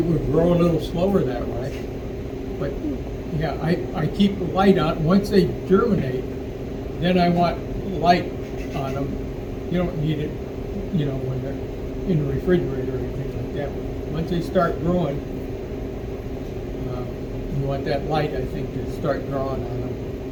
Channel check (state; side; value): identical; both; correlation 1.00